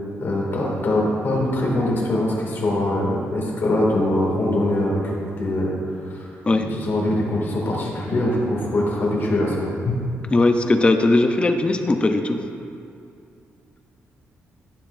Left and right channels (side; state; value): both; normal; correlation 0.85